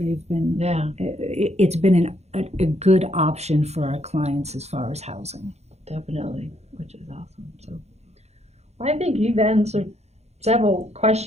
been. Yeah, It's been a good option for our clients as far as housing. definitely, which is awesome. So, well, I think you've answered several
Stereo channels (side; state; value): left; late; 0.31 ms